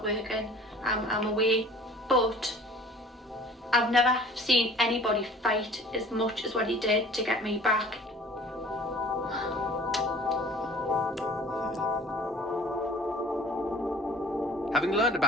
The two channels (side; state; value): both; normal; correlation 0.48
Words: working. I'm away. But I've never seen anybody fight as much as what he did to get me back. Having learned